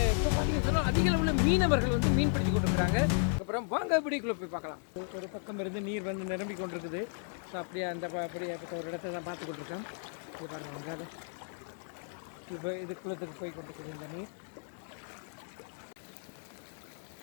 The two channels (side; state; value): right; silent; 55 dB below the other